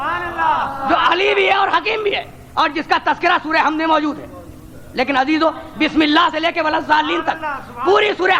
جو علی بھی ہے اور حکیم بھی ہے، اور جس کا تذکرہ سورہ حمد میں موجود ہے. لیکن عزیزو، بسم اللہ سے لے کے ولضالین تک پوری سورہ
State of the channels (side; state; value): both; identical; correlation 1.00